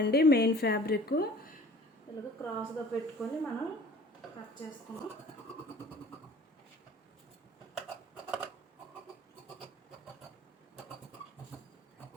మెయిన్ ఫ్యాబ్రిక్ ఇలాగ క్రాస్గా పెట్టుకొని మనం కట్ చేసుకుందాం.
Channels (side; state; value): both; normal; correlation 0.47